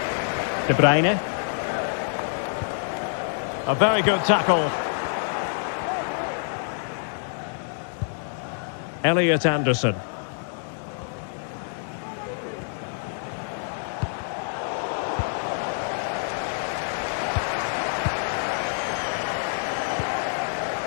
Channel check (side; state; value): right; silent; digital silence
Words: De Bruyne. A very good tackle. Elliot Anderson.